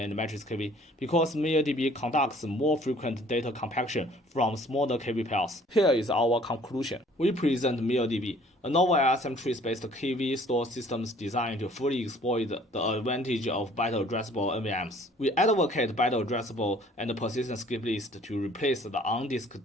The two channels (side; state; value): both; normal; correlation 0.55